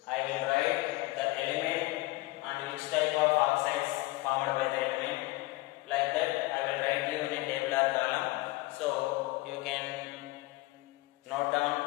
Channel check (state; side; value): quieter; right; 20.9 dB